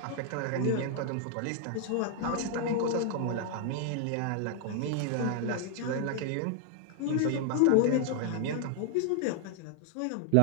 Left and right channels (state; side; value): different; both; correlation 0.00